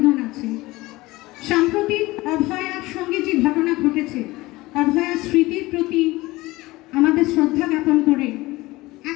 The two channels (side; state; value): right; quieter; 20.0 dB